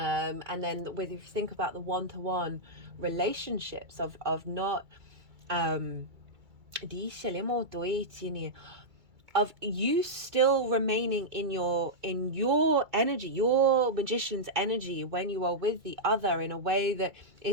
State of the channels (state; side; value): late; left; 2.3 ms